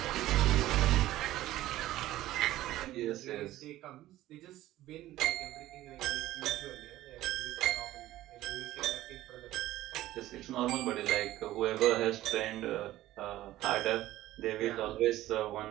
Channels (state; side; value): quieter; left; 15.1 dB